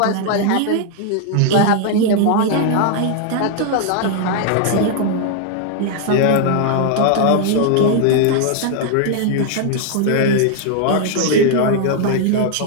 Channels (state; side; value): different; both; correlation 0.00